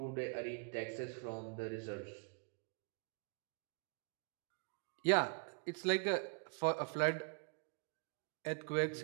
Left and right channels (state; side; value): quieter; left; 37.7 dB